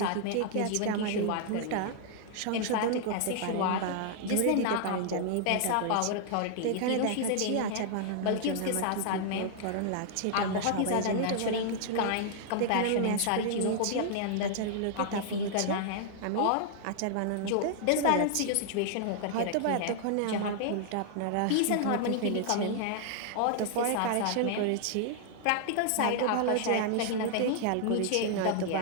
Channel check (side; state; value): both; different; correlation -0.01